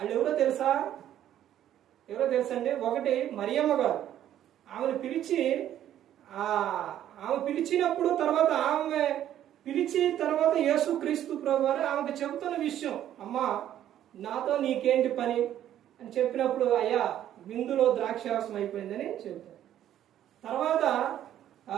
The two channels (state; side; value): quieter; left; 11.4 dB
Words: ఎవరో తెలుసా? ఎవరో తెలుసండి? ఒకటి మరియమ్మ గారు. ఆమెను పిలిచి ఆమె పిలిచినప్పుడు తర్వాత ఆమె పిలిచి తర్వాత యేసుక్రీస్తు ప్రభువారు ఆమెకు చెబుతున్న విషయం, అమ్మా నాతో నీకేంటి పని అని చెప్పినప్పుడు, అయ్యా విందులో ద్రాక్షారసం అయిపోయిందని చెబుతారు. తర్వాత